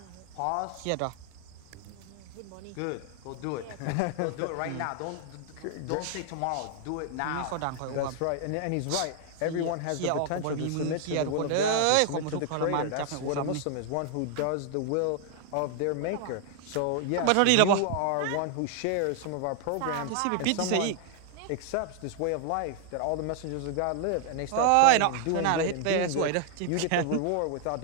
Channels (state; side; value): different; both; correlation 0.00